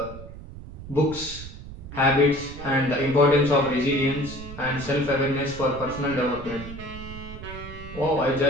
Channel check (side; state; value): right; noise; rumble, 13 dB below the sound